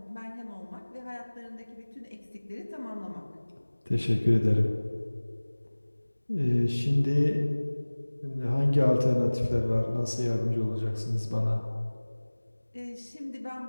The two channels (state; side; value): inverted; both; correlation -1.00